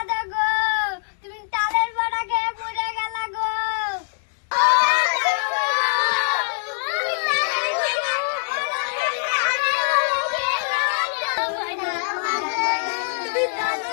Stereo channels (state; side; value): silent; right; 63 dB below the other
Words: গো, তুমি তালের বড়া খেয়ে মরে গেলা গো।